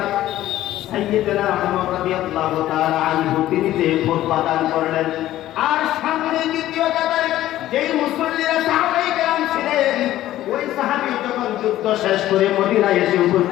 সাইয়েদনা উমর রাদিয়াল্লাহু তাআলা আনহু তিনি যে খুতবা দান করলেন, আর সামনে দ্বিতীয় কাতারে যেই মুসল্লিরা সাহাবায়ে কেরাম ছিলেন, ওই সাহাবী যখন যুদ্ধ শেষ করে মদিনায় এসে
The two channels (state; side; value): quieter; right; 14.1 dB